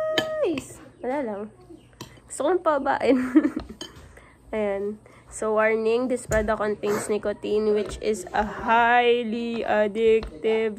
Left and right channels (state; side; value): identical; both; correlation 1.00